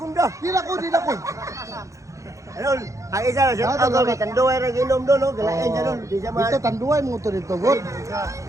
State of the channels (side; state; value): left; late; 0.15 ms